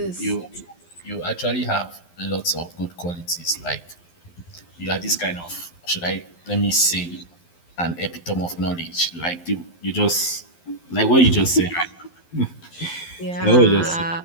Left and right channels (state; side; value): late; right; 12 ms